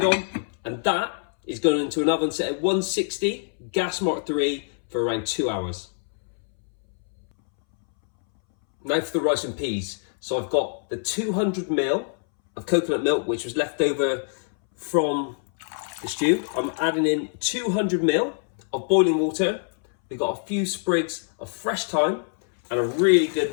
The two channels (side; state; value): right; silent; 62 dB below the other